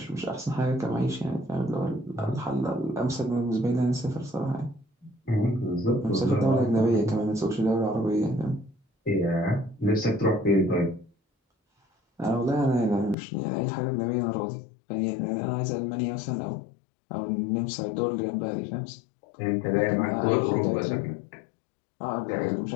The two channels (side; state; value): right; drops out; at 13.2 s